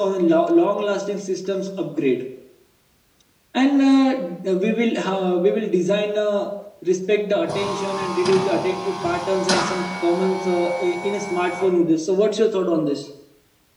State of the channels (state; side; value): identical; both; correlation 1.00